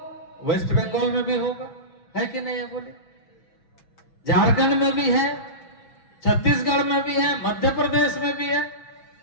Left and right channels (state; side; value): late; right; 6.2 ms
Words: वेस्ट बंगाल में भी होगा, है कि नहीं है? बोले झारखंड में भी है, छत्तीसगढ़ में भी है, मध्य प्रदेश में भी है,